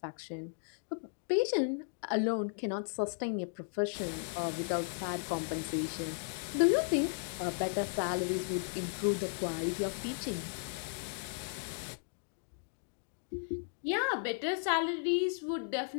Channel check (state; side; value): silent; right; digital silence